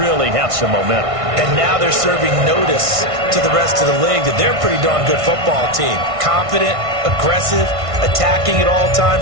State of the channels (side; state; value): left; late; 1.5 ms